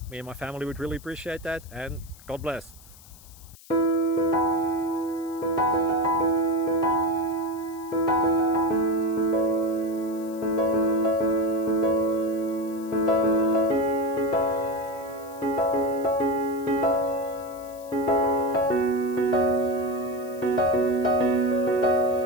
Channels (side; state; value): left; noise; hiss, 22 dB below the sound